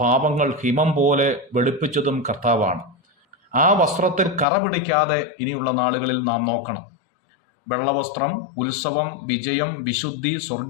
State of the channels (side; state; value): right; drops out; at 4.5 s